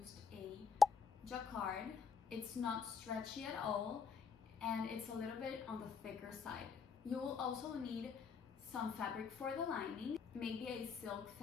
a jacquard. It's not stretchy at all and it's a little bit on the thicker side. You will also need some fabric for the lining. Maybe a silk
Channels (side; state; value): right; quieter; 5.8 dB